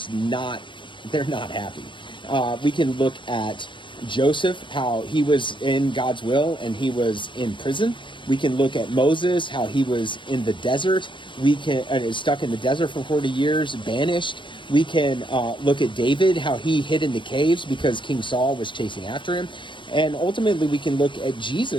not happy. We can look at Joseph, how he was in God's will and he was in prison. We can look at Moses, how he was in the desert. We can stuck in the desert for 40 years, banished. We can look at David, how he hid in the caves because King Saul was chasing after him. And ultimately, we can look at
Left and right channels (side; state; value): right; late; 0.23 ms